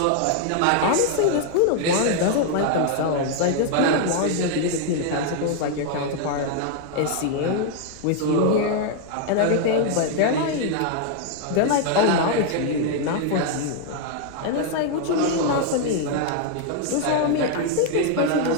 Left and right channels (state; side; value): different; both; correlation 0.00